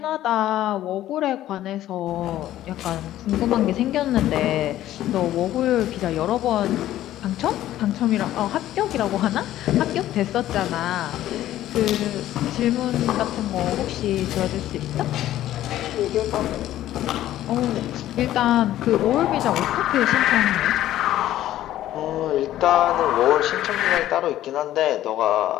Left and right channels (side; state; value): right; quieter; 13.4 dB